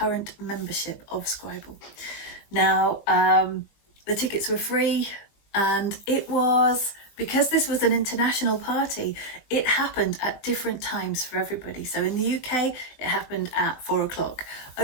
membership of Scribal. Now, the tickets were free, and it was, because this was an international party, it happened at different times for everybody. So in the UK, it happened at 4 o'clock.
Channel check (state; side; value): late; right; 19 ms